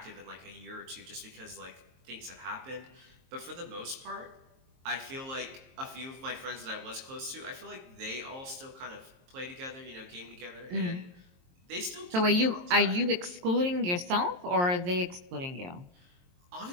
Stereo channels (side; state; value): left; late; 23 ms